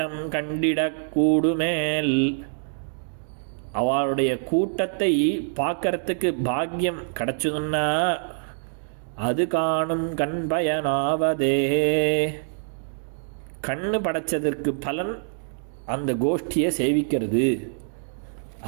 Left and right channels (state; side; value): silent; left; digital silence